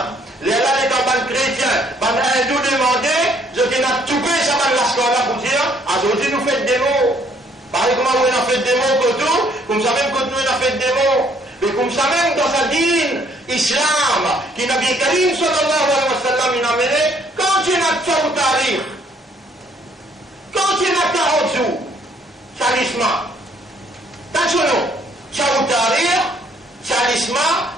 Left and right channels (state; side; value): normal; both; correlation 0.64